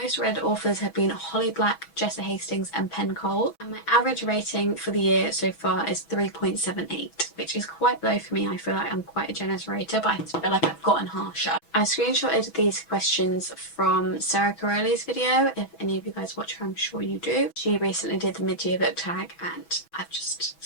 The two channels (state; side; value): late; right; 6.1 ms